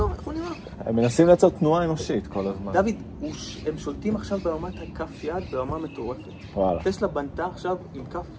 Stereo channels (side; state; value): both; identical; correlation 1.00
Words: איך הוא נראה? הם מנסים לייצר תנועה אנושית כל הזמן. דוד, הם שולטים עכשיו ברמת כף יד ברמה מטורפת. וואלה. טסלה בנתה עכשיו עם